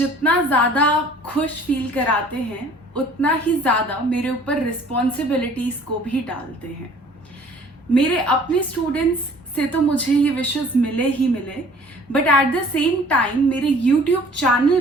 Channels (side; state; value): both; normal; correlation 0.52